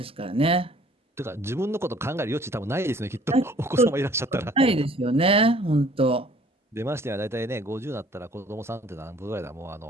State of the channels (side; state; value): both; normal; correlation 0.55